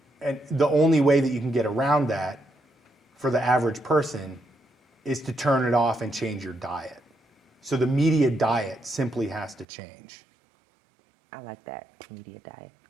the only way that you can get around that for the average person is to turn it off and change your diet. So the media diet simply has to change. I like that, media diet.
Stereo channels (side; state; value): left; drops out; at 9.7 s